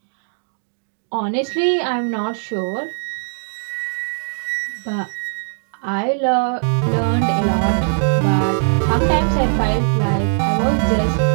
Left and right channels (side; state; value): left; silent; digital silence